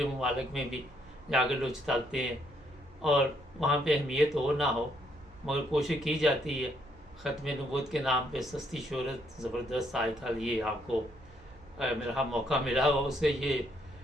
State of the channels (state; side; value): noise; right; hum, 25 dB below the sound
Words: ममालिक में भी जाकर लोग चलते हैं और वहाँ पे अहमियत हो ना हो, मगर कोशिश की जाती है। ख़त्म नबूवत के नाम पे सस्ती शोहरत ज़बरदस्त आजकल ये आपको मेरा मौका मिला हो, उससे